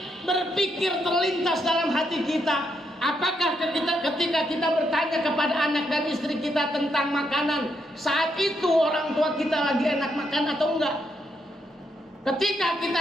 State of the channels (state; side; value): normal; both; correlation 0.79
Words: berpikir terlintas dalam hati kita, apakah ketika kita bertanya kepada anak dan istri kita tentang makanan, saat itu orang tua kita lagi enak makan atau enggak? Ketika